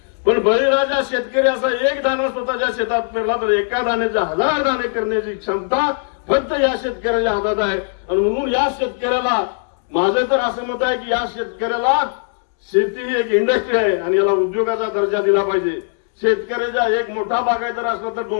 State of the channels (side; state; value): right; silent; digital silence